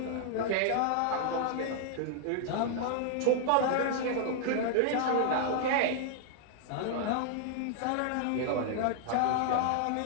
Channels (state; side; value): different; both; correlation -0.01